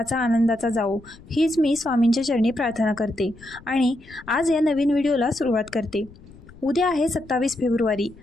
आनंदाचा जावो हीच मी स्वामींच्या चरणी प्रार्थना करते आणि आज या नवीन व्हिडिओला सुरुवात करते. उद्या आहे 27 फेब्रुवारी,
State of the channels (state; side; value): noise; left; rumble, 22 dB below the sound